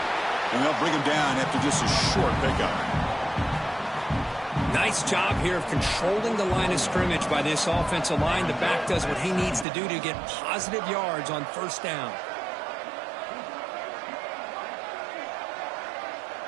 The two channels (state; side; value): drops out; left; at 9.7 s